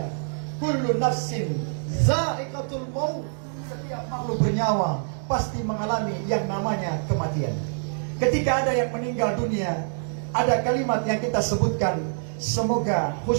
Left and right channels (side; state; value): left; silent; digital silence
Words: kullu nafsin za'iqatul maut, setiap makhluk bernyawa pasti mengalami yang namanya kematian. Ketika ada yang meninggal dunia, ada kalimat yang kita sebutkan, semoga